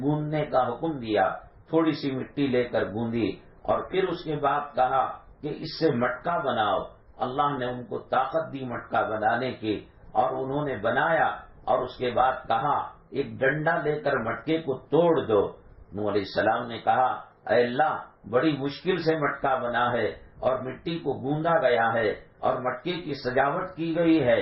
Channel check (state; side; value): identical; both; correlation 1.00